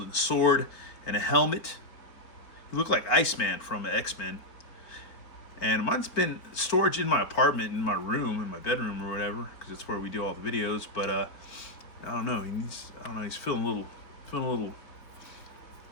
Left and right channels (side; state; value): right; late; 4.4 ms